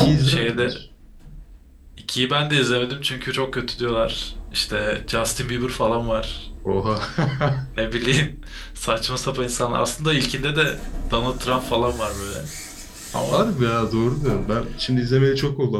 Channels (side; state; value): both; identical; correlation 1.00